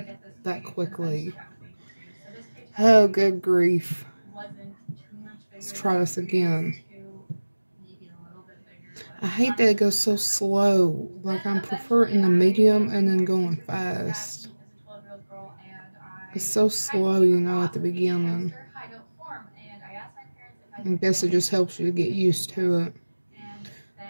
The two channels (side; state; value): both; inverted; correlation -1.00